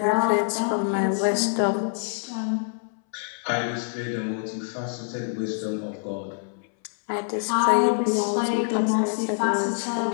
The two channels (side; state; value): right; silent; 61 dB below the other